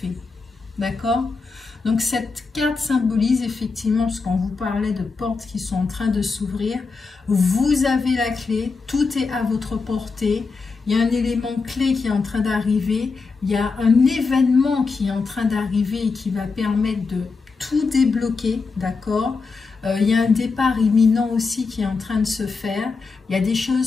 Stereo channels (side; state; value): right; quieter; 4.4 dB